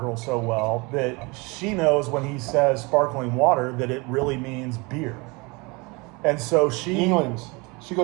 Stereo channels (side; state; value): left; quieter; 26.9 dB